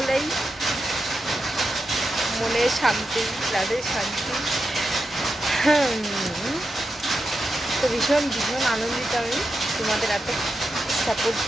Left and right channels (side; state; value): both; normal; correlation 0.88